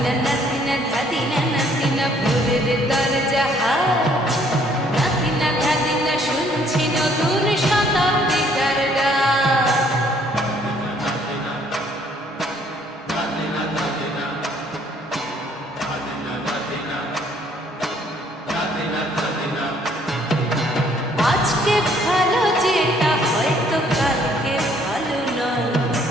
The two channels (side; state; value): both; normal; correlation 0.63